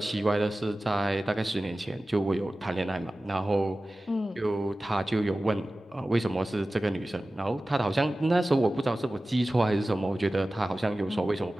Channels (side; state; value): both; normal; correlation 0.96